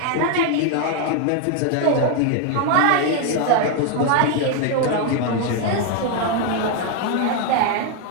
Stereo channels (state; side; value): different; both; correlation 0.01